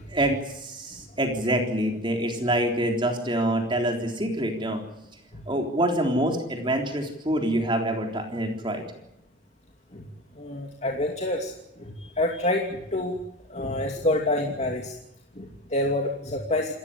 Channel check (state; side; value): normal; both; correlation 0.35